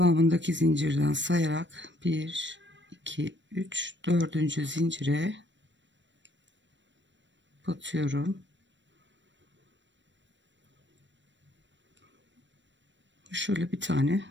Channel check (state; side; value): late; left; 0.53 ms